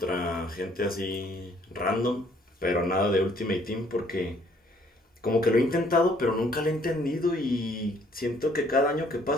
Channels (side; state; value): both; normal; correlation 0.63